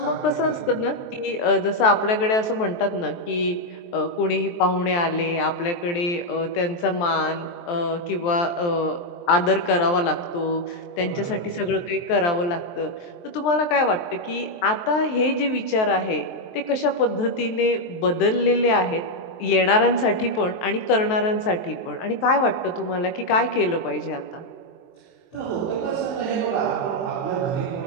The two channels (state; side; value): late; right; 23 ms